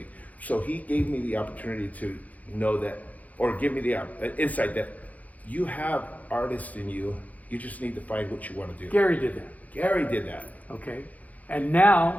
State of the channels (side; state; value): right; late; 0.075 ms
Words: So he gave me the opportunity to know that, or give me the insight that you have artists in you. You just need to find what you want to do. Gary did that. Gary did that. Okay. And now